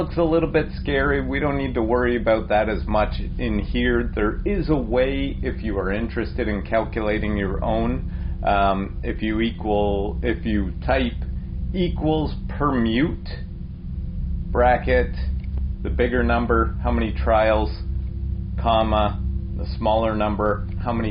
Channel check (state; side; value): identical; both; correlation 1.00